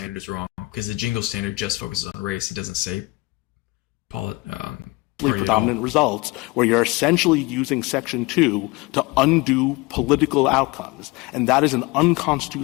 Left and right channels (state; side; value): quieter; right; 22.9 dB